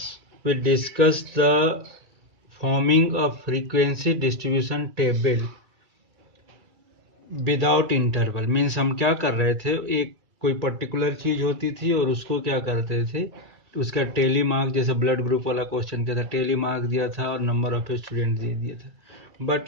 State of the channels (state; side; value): late; left; 1.8 ms